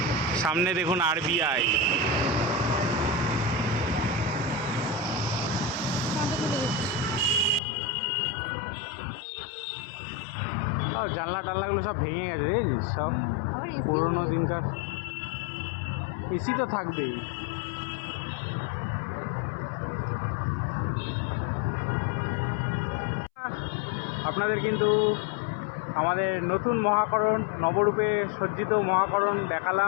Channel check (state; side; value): drops out; right; at 7.6 s